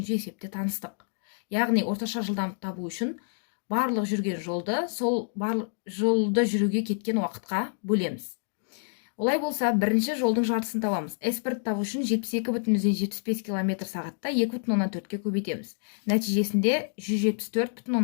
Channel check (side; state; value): right; silent; digital silence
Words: есепте таныстық. Яғни орташа жылдамдықты табу үшін барлық жүрген жолды сол барлық жолды жүруге кеткен уақытқа бөлеміз. Олай болса, бірінші жолдың жартысын табамыз. S1 табу үшін 72,75 км сағатта 2,4-ке көбейтеміз. Нәтижесінде